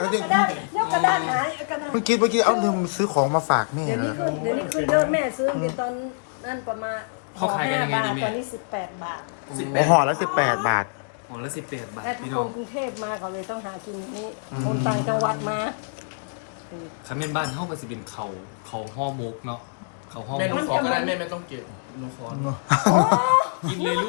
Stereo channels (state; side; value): silent; right; digital silence